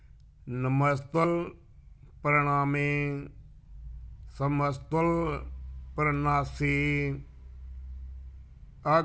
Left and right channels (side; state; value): both; identical; correlation 1.00